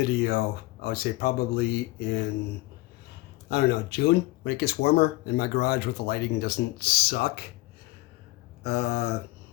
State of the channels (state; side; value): quieter; right; 20.0 dB